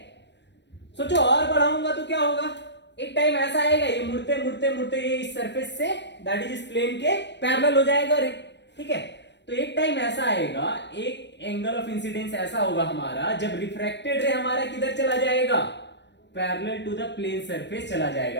सोचो और बढ़ाऊंगा तो क्या होगा, एक टाइम ऐसा आएगा ये मुड़ते मुड़ते मुड़ते ये इस सरफेस से दैट इज इस प्लेन के पैरेलल हो जाएगा रे। ठीक है, तो एक टाइम ऐसा आएगा, एक एंगल ऑफ इंसिडेंस ऐसा होगा हमारा जब रिफ्रैक्टेड रे हमारा किधर चला जाएगा, parallel to the plane surface चला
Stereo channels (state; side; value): late; right; 0.51 ms